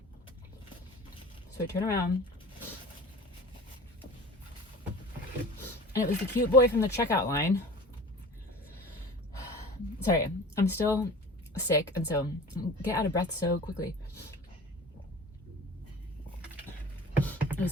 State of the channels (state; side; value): normal; both; correlation 0.40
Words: So I turn around, and it was the cute boy from the checkout line. Sorry, I'm still sick, and so get out of breath so quickly. It was